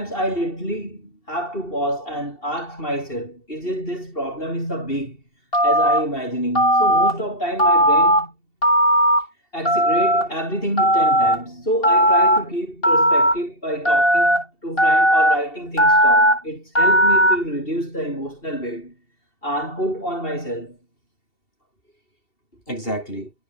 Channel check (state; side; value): late; right; 2.7 ms